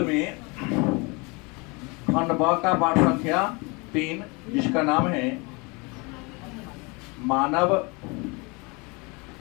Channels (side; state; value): right; quieter; 28.6 dB